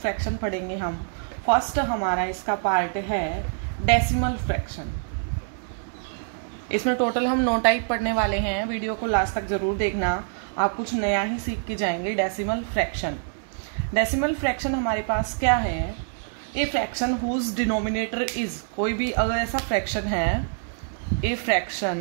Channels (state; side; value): silent; left; digital silence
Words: पढ़ेंगे हम। फर्स्ट हमारा इसका पार्ट है डेसिमल फ्रैक्शन। इसमें टोटल हम 9 टाइप पढ़ने वाले हैं। वीडियो को लास्ट तक जरूर देखना, आप कुछ नया ही सीख के जाएंगे। डेसिमल फ्रैक्शन हमारे पास क्या है? A fraction whose denominator is, कोई भी अगर ऐसा फ्रैक्शन है, a